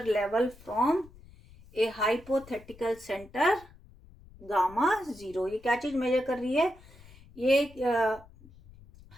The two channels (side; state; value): left; noise; rumble, 23 dB below the sound